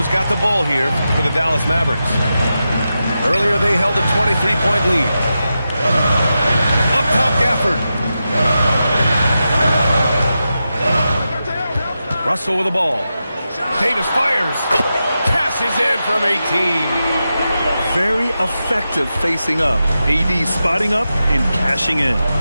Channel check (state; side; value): inverted; both; correlation -0.90